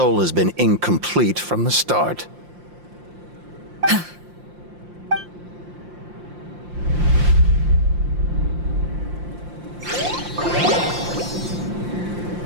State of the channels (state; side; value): late; left; 5.7 ms